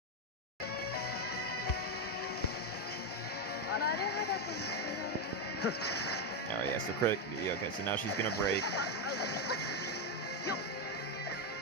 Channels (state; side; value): normal; both; correlation 0.06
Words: Alright, yeah, so crit. Yeah, okay, so now she's gonna break.